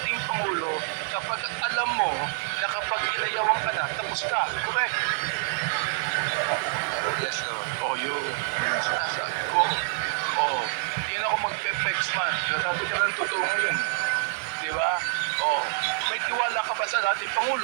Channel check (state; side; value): silent; left; digital silence